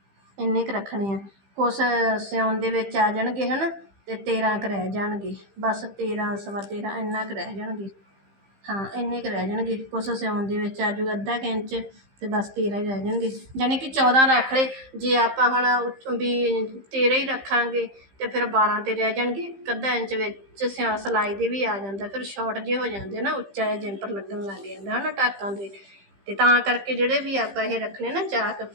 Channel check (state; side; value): late; left; 15 ms